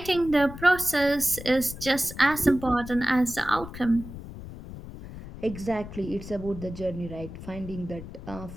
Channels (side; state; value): left; noise; rumble, 12 dB below the sound